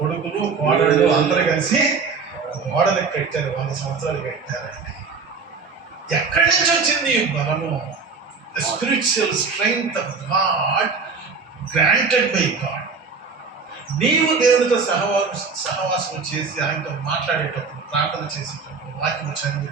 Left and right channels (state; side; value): quieter; left; 4.9 dB